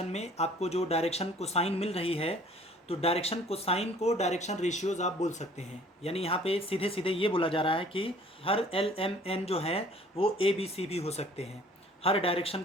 में आपको जो डायरेक्शन कोसाइन मिल रही है तो डायरेक्शन कोसाइन को डायरेक्शन रेशियोज आप बोल सकते हैं। यानी यहाँ पे सीधे सीधे ये बोला जा रहा है कि हर एल एम एन जो है वो ए बी सी भी हो सकते हैं, हर डायरेक्शन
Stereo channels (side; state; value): both; normal; correlation 0.54